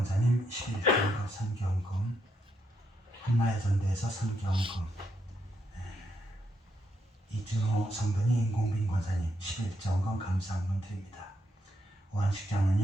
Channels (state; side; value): normal; both; correlation 0.79